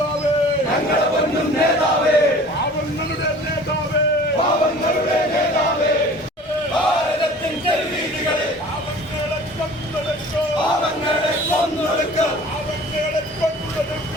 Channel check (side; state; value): both; normal; correlation 0.45